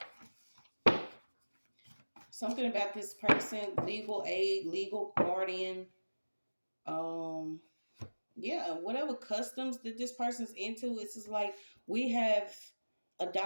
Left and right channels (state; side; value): inverted; both; correlation -1.00